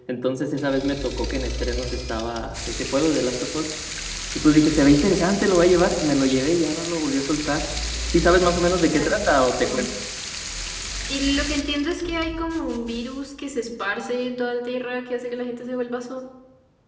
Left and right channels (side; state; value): both; identical; correlation 1.00